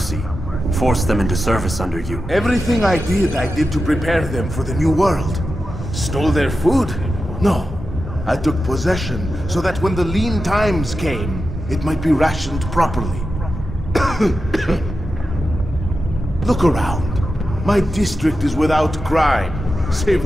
forced them into service under you. Everything I did to prepare them for the new world. Stole their food? No. I took possession so that when the lean times came, it might be rationed properly. Look around. My district is without crime, save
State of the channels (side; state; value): both; normal; correlation 0.91